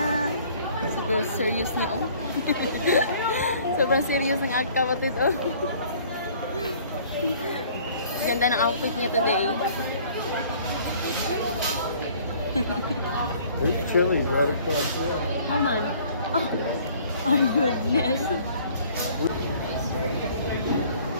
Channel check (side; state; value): both; inverted; correlation -0.55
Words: Super serious niya, oh. Sobrang serious ng aking kapatid, oh. Ganda ng outfit niya today. There's Chili's right across there. Come on. Oh, my goodness.